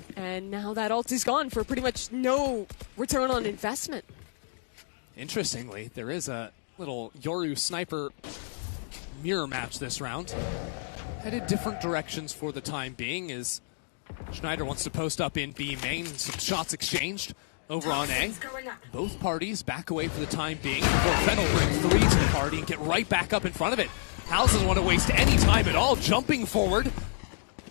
And now that ult is gone for pretty much no return on investment. Interestingly, there is a little Yoru sniper mirror match this round. Headed different directions for the time being as Schneider wants to post up in B main. Some shots exchanged over on A. Both parties back away for the time being before Fennel brings 3 to the party and get right back up in front of it. House doesn't want to waste any time at all, jumping forward.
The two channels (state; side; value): silent; right; digital silence